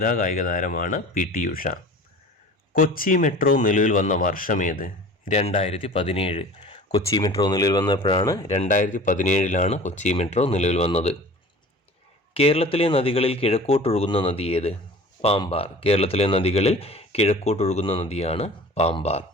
കായിക താരമാണ് PT ഉഷ. കൊച്ചി മെട്രോ നിലവിൽ വന്ന വർഷമേത്? 2017. കൊച്ചി മെട്രോ നിലവിൽ വന്നപ്പോഴാണ് 2017 കൊച്ചി മെട്രോ നിലവിൽ വന്നത്. കേരളത്തിലെ നദികളിൽ കിഴക്കോട്ടൊഴുകുന്ന നദി ഏത്? പാമ്പാർ. കേരളത്തിലെ നദികളിൽ കിഴക്കോട്ടൊഴുകുന്ന നദിയാണ് പാമ്പാർ.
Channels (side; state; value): both; normal; correlation 0.42